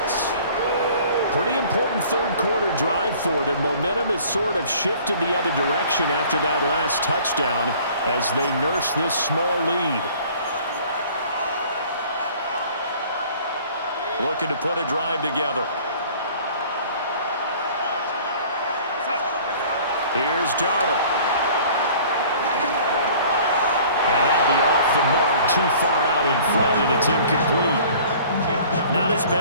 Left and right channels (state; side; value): inverted; both; correlation -0.50